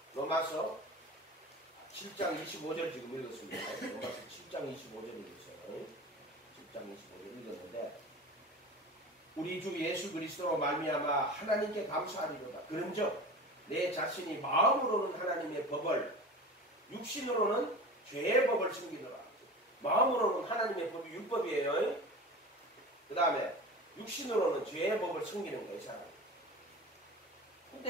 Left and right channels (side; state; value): both; normal; correlation 0.34